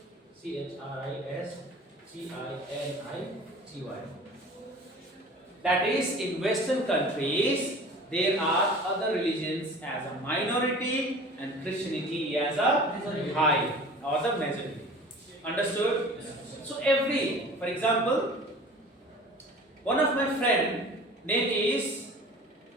Christianity. That is, in Western countries, there are other religions as a minority and Christianity as a high or the majority. Understood? So for example, one of my friend name is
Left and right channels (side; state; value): both; normal; correlation 0.43